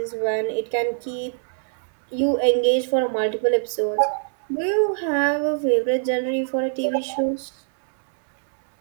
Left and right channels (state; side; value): silent; left; 63 dB below the other